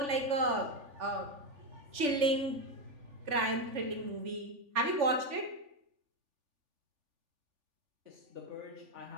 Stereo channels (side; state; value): left; late; 3.4 ms